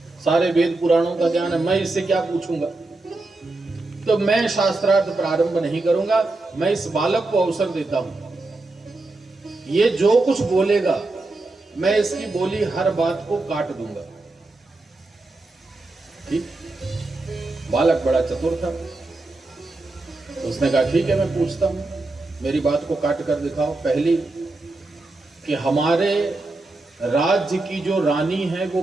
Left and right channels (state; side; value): quieter; left; 3.1 dB